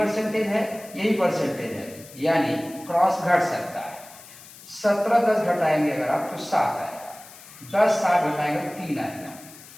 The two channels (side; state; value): left; noise; hiss, 19 dB below the sound